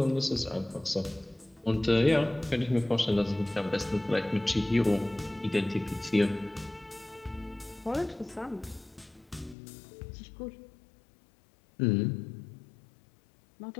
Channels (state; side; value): drops out; right; at 9.6 s